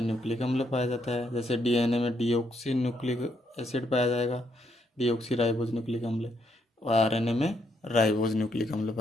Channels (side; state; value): both; normal; correlation 0.75